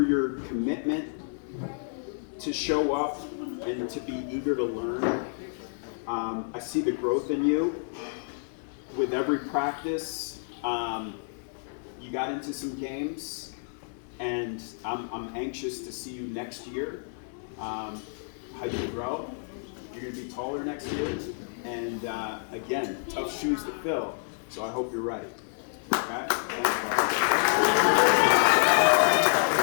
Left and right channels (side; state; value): right; silent; digital silence